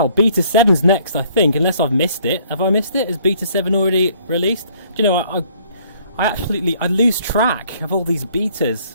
Beta 7's next, I think, unless I've missed it. Have I missed it? Is Beta 7 already released? Do you know, I lose track of all these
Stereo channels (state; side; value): inverted; both; correlation -0.61